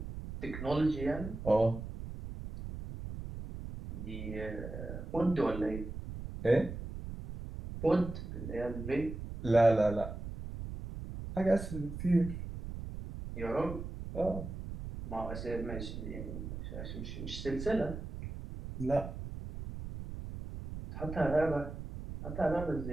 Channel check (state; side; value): noise; right; rumble, 8 dB below the sound